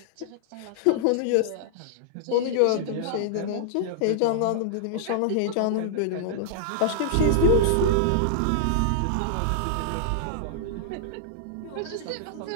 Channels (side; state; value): both; different; correlation -0.01